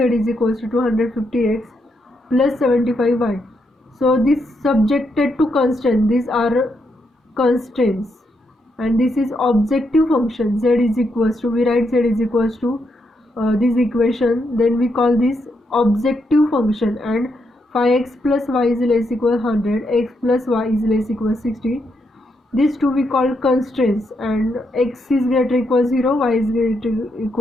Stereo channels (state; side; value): normal; both; correlation 0.80